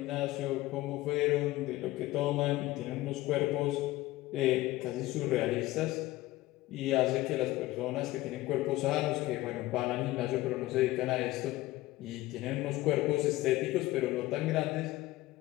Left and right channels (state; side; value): quieter; right; 17.6 dB